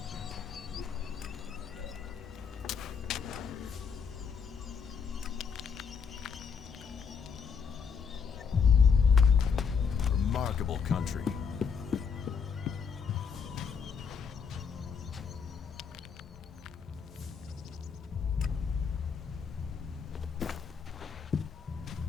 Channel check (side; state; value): right; quieter; 6.2 dB